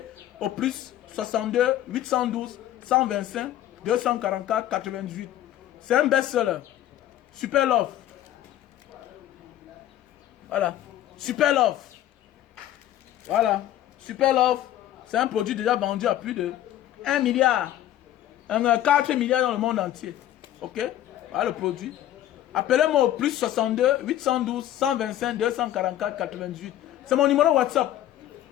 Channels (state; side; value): quieter; right; 12.7 dB